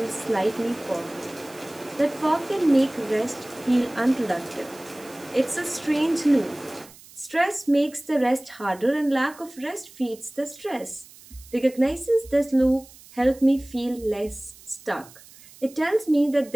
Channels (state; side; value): noise; right; hiss, 22 dB below the sound